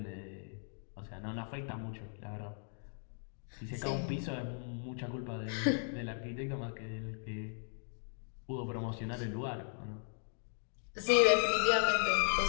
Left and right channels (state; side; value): silent; right; 53 dB below the other